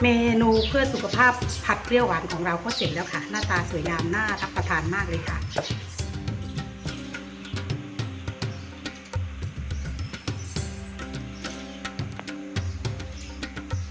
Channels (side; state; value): both; identical; correlation 1.00